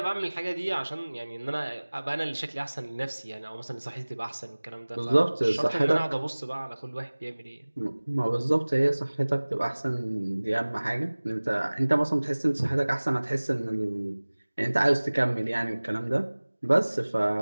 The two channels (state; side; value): inverted; both; correlation -1.00